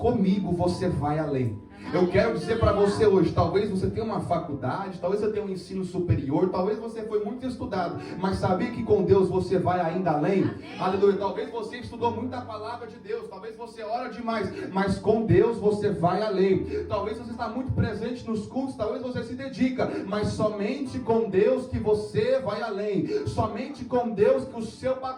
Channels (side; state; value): both; identical; correlation 1.00